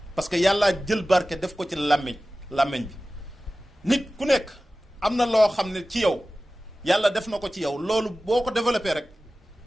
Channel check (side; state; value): both; normal; correlation 0.96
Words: parce que yàllaa jël barke def ko ci làmmiñ bi nit ku nekk am na loo xam ne ci yow yàlla def na ko ci yow loolu boo ko développé rek